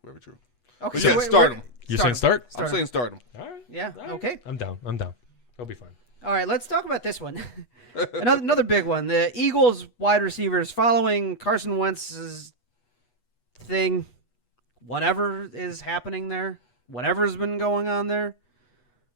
Very true. Okay, so start him. You're saying start? I'm saying start him. All right. Yeah. All right. Okay. I'm down. He'll be fine. All right, let's talk about this one. another big one. The Eagles wide receivers following Carson Wentz's thing. Whatever is happening there, whatever's been going on there.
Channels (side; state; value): right; late; 8.2 ms